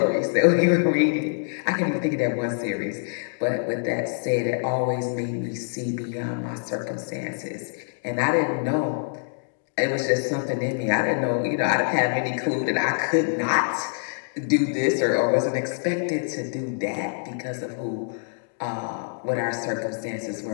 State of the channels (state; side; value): silent; right; digital silence